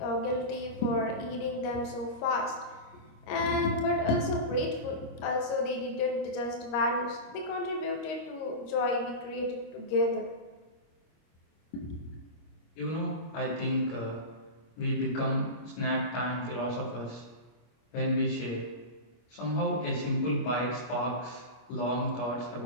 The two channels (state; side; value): late; right; 25 ms